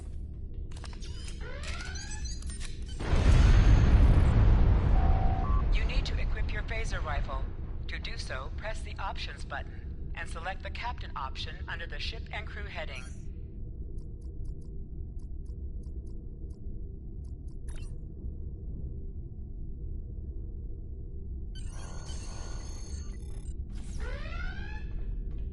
You need to equip your phaser rifle. To do so, press the Options button and select the Captain option under the Ship and Crew heading.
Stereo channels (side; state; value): both; identical; correlation 1.00